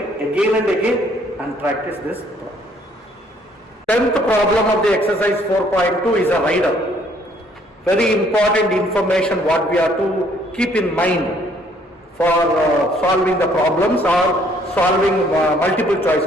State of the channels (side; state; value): both; normal; correlation 0.64